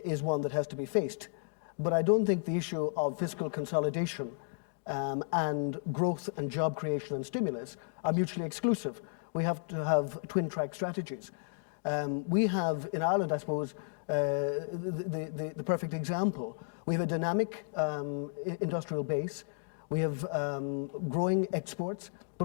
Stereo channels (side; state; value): right; silent; digital silence